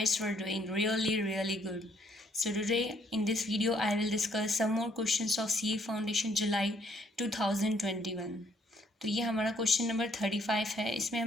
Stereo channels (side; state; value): both; normal; correlation 0.67